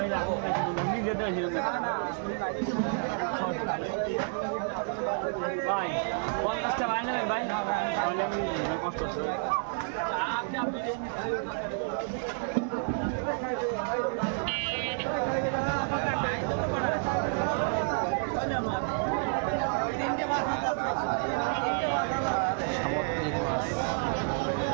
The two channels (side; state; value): left; silent; 58 dB below the other